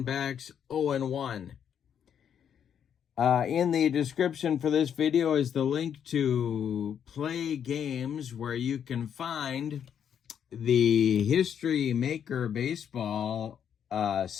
0-1. In the description for this video is the link to Play Games, where you can find the History Maker Baseball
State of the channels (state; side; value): quieter; right; 8.5 dB